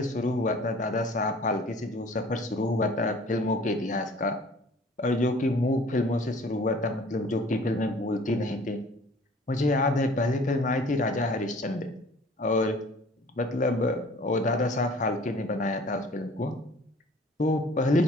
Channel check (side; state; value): both; normal; correlation 0.50